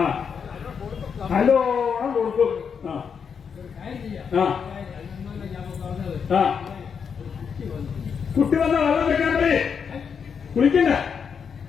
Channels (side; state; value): right; quieter; 6.6 dB